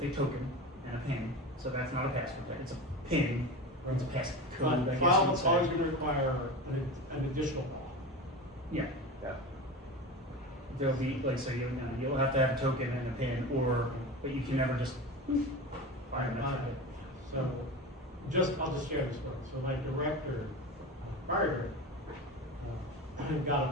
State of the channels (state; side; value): normal; both; correlation 0.27